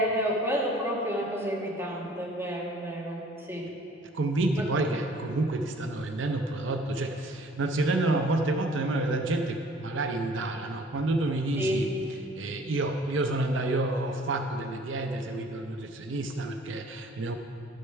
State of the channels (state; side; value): normal; both; correlation 0.53